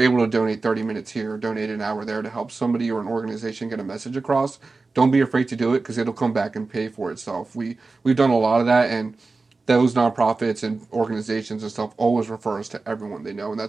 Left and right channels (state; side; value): quieter; left; 3.8 dB